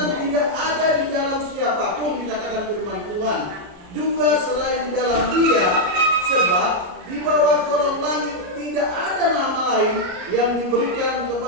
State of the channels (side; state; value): left; late; 33 ms